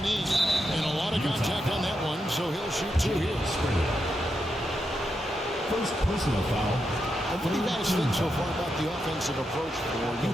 And a lot of contact on that one, so he'll shoot 2 here. First personal foul. What do you guys think so far about the offensive approach for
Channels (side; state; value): both; normal; correlation 0.85